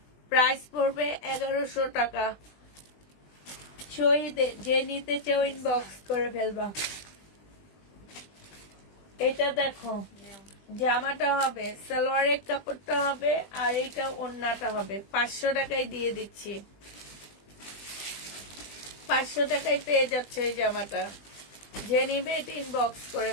প্রাইস পড়বে 1100 টাকা। যে নিতে চাও ইনবক্স করে ফেলবা। এটা দেখো, জামাটা হবে, সালোয়ারের কাপড়টা হবে আর এইটা ওড়নাটা হবে। 500 টাকায় দিয়ে দিচ্ছি। 500 টাকায় পেয়ে যাচ্ছে এই জামাটা। যে নিবে এটা ইনবক্স করে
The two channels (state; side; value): late; right; 20 ms